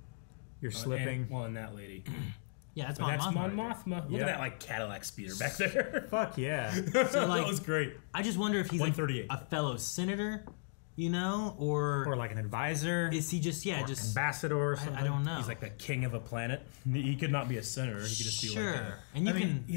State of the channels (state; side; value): silent; right; digital silence